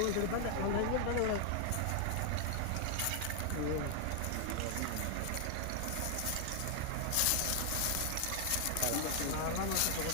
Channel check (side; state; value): both; different; correlation 0.00